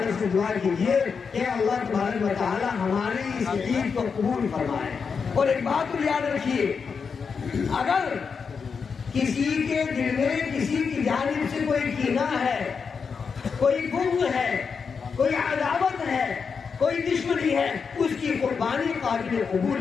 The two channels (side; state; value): right; quieter; 5.7 dB